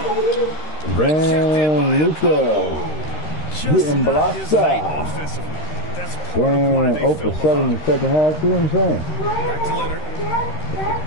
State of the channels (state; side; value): late; right; 13 ms